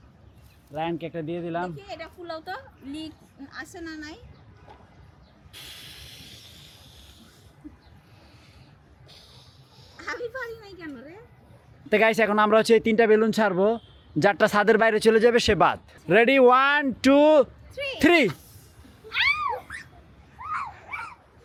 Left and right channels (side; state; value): both; identical; correlation 1.00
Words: রায়ানকে একটা দিয়ে দিলাম। দেখি এটা ফুলাও তো, লিক আছে না নাই? আমি পারি নাই কেন রে? তো গাইস এখন আমরা হচ্ছে 3টা বেলুন ছাড়বো, যারটা ছাদের বাইরে চলে যাবে সে বাদ। রেডি, 1 2 3।